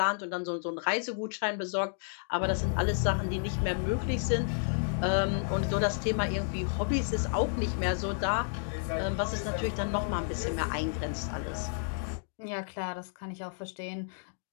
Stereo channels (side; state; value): right; silent; digital silence